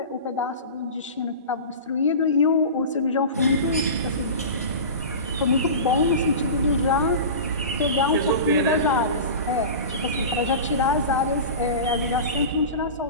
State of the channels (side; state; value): both; inverted; correlation -0.31